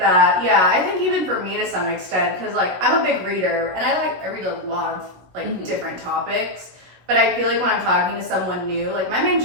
Yeah, I think even for me to some extent, because like I'm a big reader and I read a lot of like different topics. But I feel like when I'm talking to someone new, like my main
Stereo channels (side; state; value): left; late; 16 ms